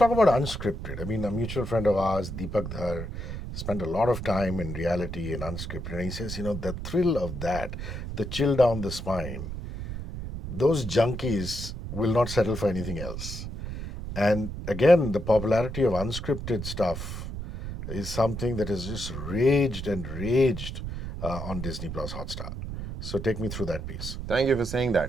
about unscripted. I mean, a mutual friend of ours, Deepak Dhar, spent a lot of time in reality and unscripted. And he says, the thrill of that, the chill down the spine, those junkies will not settle for anything else. And again, the popularity of unscripted stuff is something that has just raged and raged on Disney Plus Hotstar. So take me through that piece. Thank you for saying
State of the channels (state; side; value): noise; right; rumble, 7 dB below the sound